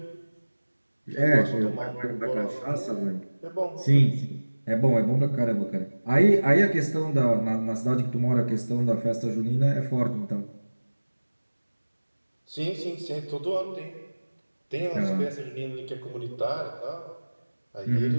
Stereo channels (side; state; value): both; inverted; correlation -1.00